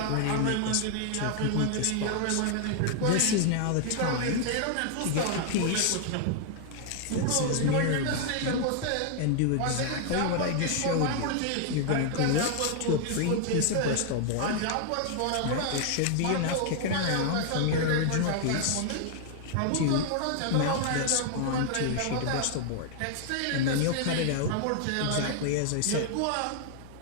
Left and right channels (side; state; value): both; different; correlation 0.00